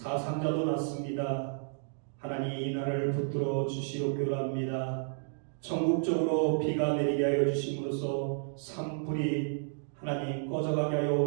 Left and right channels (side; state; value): left; silent; digital silence